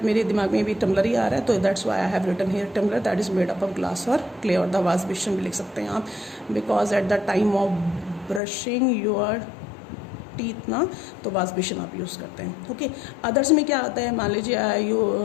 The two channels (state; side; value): drops out; right; at 8.4 s